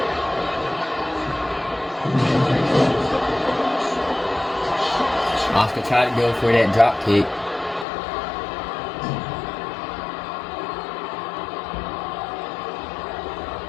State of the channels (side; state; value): right; drops out; at 7.9 s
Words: Asuka tried to go for that drop kick.